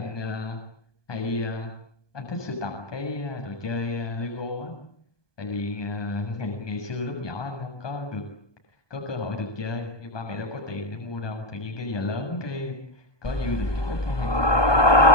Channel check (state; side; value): late; right; 1.2 ms